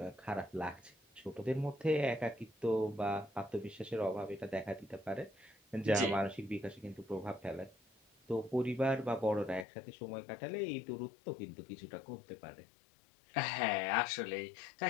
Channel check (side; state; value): right; drops out; at 9.7 s